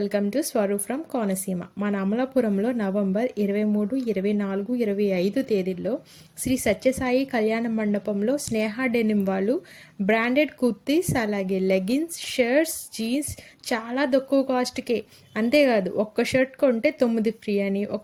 to Swaroop from Konaseema. మన అమలాపురంలో November 23, 24, 25 తేదీల్లో శ్రీ సత్యసాయి కళ్యాణ మండపంలో స్నేహ డెనిమ్ వాళ్ళు బ్రాండెడ్ కుర్తీస్, అలాగే లెగిన్స్, షర్ట్స్, జీన్స్ చాలా తక్కువ కాస్ట్కే. అంతేకాదు, ఒక్క షర్ట్ కొంటే 9 ఫ్రీ అని,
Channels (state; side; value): identical; both; correlation 1.00